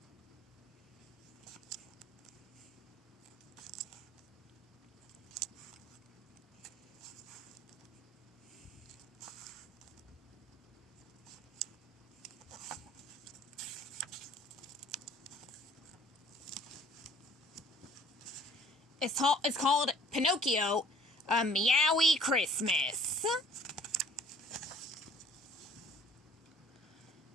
It's called Pinocchio, A Meowy Christmas.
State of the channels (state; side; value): normal; both; correlation 0.54